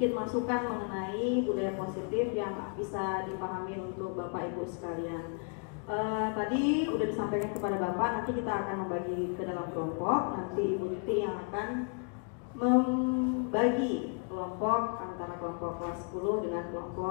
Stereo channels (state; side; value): quieter; right; 39.1 dB